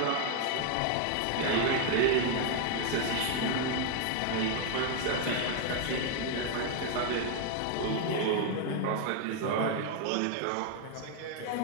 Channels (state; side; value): different; both; correlation 0.00